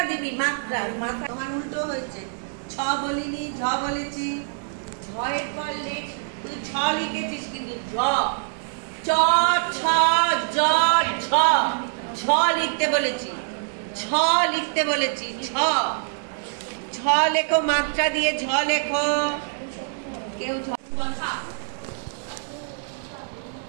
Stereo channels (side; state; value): left; silent; 62 dB below the other